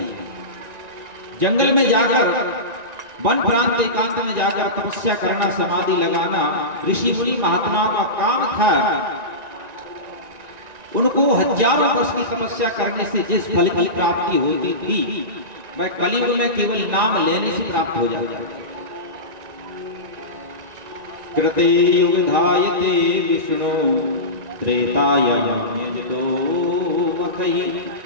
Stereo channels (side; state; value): left; late; 1.9 ms